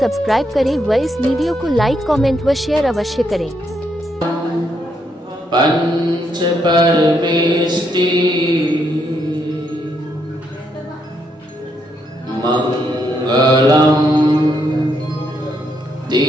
करें व इस वीडियो को लाइक कमेंट व शेयर अवश्य करें। पंच परमेष्टि मंगलम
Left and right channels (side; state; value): both; normal; correlation 0.76